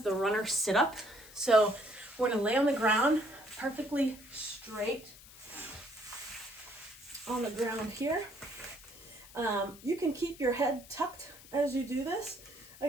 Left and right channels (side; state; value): left; noise; hiss, 20 dB below the sound